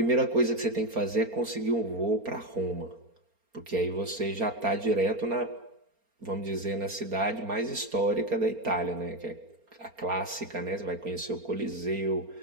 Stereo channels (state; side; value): late; left; 4.4 ms